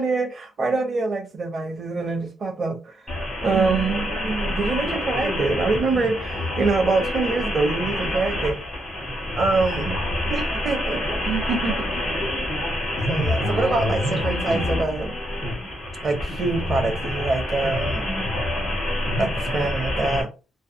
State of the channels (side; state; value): both; normal; correlation 0.80